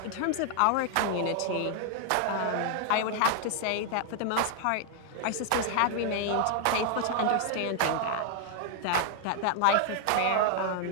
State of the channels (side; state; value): both; different; correlation 0.00